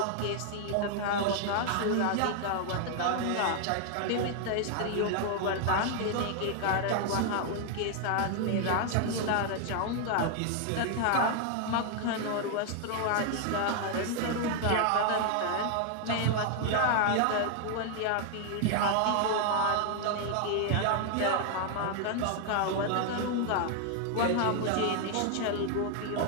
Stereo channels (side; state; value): both; different; correlation 0.00